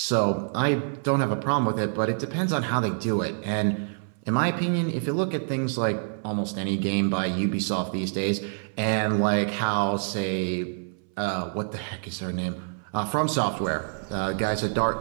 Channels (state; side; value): silent; left; 60 dB below the other